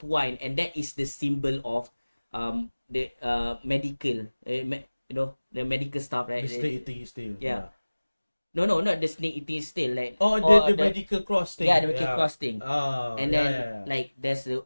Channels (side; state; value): both; inverted; correlation -1.00